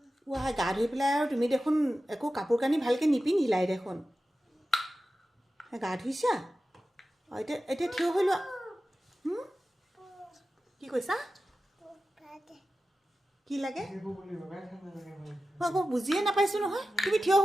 ৱাই গা ধুই পেলাই আৰু তুমি দেখোন একো কাপোৰ কানি ভালকৈ নিপিন্ধিলাই দেখোন গা ধুইছা অঁ এতিয়া এতিয়া থিয় হৈ লোৱা কি কৈছা কি লাগে মই আকৌ বুজিয়ে নাপাইছোঁ নহয় তুমি থিয়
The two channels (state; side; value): normal; both; correlation 0.93